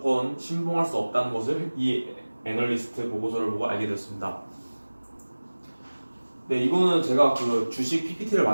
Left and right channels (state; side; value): inverted; both; correlation -1.00